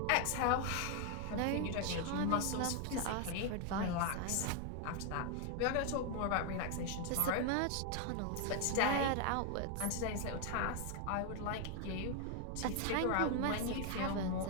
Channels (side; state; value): both; different; correlation 0.00